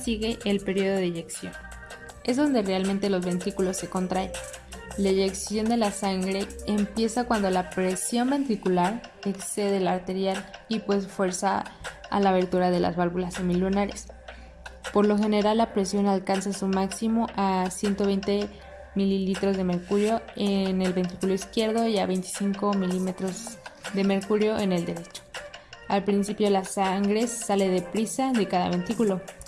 el periodo de eyección. Es donde realmente los ventrículos se contraen. La eyección de la sangre empieza cuando la presión ventricular excede la arterial y pues fuerza a la abertura de las válvulas semilunares. Por lo general la presión alcanza su máximo a 120 mililitros de mercurio en el ventrículo izquierdo y a 25 milímetros de mercurio en el derecho. Al principio la sangre sale deprisa de cada ventrículo,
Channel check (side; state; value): both; identical; correlation 1.00